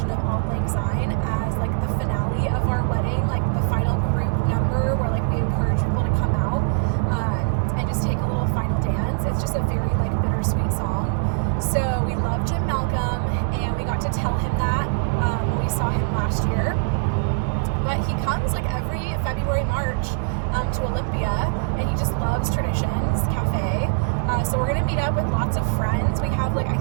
of Auld Lang Syne as like the finale of our wedding, like the final group number where like we encourage people to come out and just take a little final dance. It's just a very like bittersweet song. So we love Jim Malcolm, and we got to tell him that when we saw him last year. But he comes like every February, March to Olympia, and he just loves Traditions Cafe. So we're gonna meet up with lots of friends. We have like, I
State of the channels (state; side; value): silent; left; 56 dB below the other